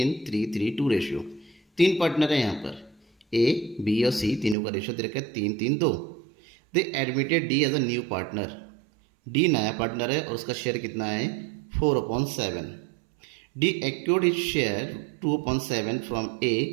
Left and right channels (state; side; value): drops out; left; at 4.5 s